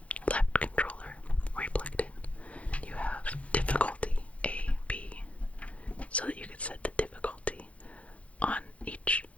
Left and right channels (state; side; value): late; right; 0.064 ms